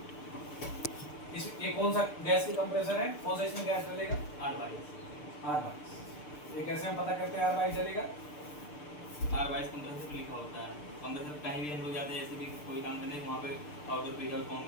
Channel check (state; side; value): late; right; 6.7 ms